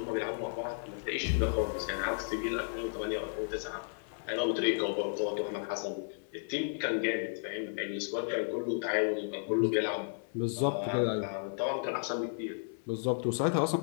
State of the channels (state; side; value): silent; right; 55 dB below the other